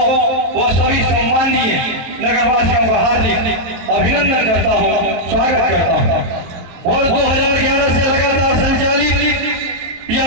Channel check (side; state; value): left; late; 22 ms